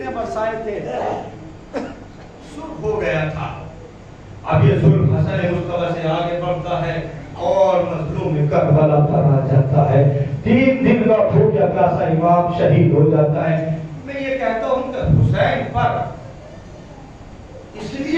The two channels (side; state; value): both; identical; correlation 1.00